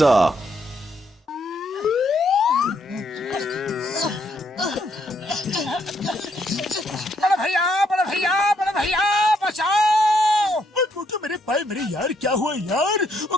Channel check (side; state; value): both; normal; correlation 0.73